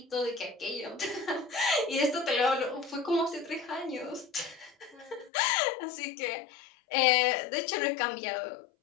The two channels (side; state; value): right; drops out; at 5.3 s